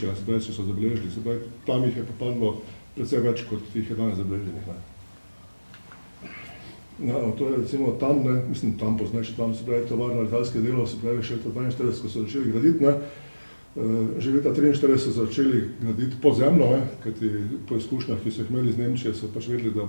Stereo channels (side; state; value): both; inverted; correlation -1.00